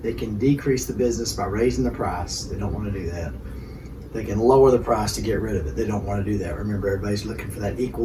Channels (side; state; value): both; identical; correlation 1.00